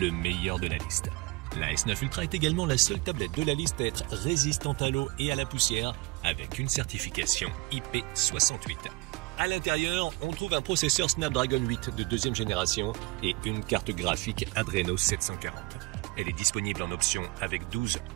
meilleur de la liste. La S9 Ultra est également la seule tablette de la liste à être résistante à l'eau et à la poussière avec une certification IP68. À l'intérieur, on trouve un processeur Snapdragon 8 de deuxième génération et une carte graphique Adreno 740. Elle est disponible en option avec 12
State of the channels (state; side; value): quieter; left; 23.7 dB